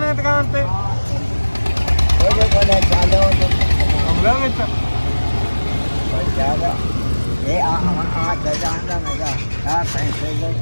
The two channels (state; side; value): inverted; both; correlation -1.00